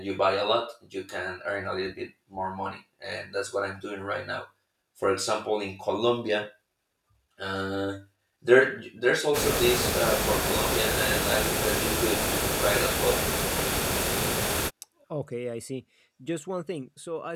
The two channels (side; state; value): both; identical; correlation 1.00